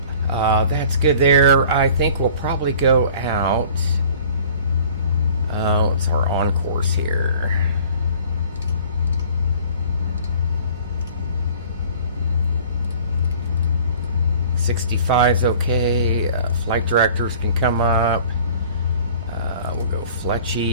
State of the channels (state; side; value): inverted; both; correlation -0.49